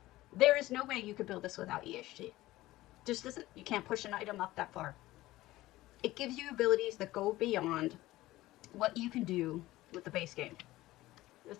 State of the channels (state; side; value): quieter; right; 17.1 dB